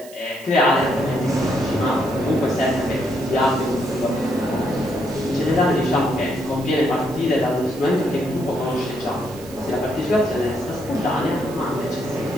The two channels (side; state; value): right; noise; hiss, 19 dB below the sound